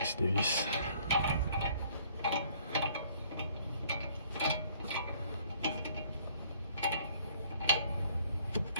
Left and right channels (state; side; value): inverted; both; correlation -0.59